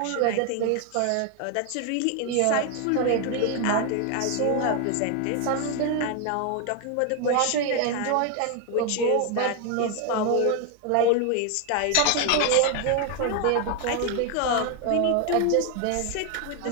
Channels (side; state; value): both; different; correlation 0.01